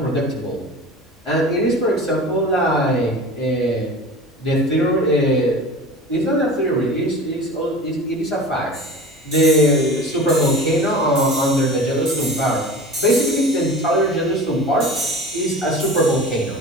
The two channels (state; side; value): normal; both; correlation 0.36